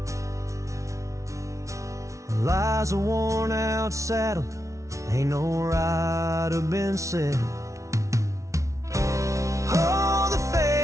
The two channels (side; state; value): left; late; 0.15 ms